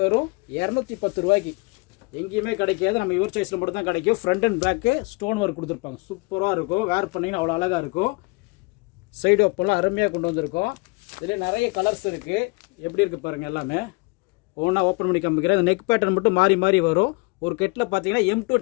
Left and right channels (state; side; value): quieter; right; 27.3 dB